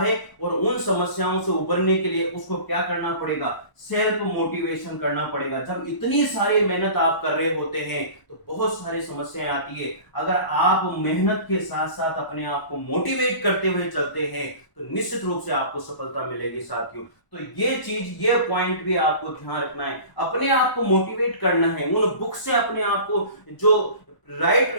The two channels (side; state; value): right; late; 1.0 ms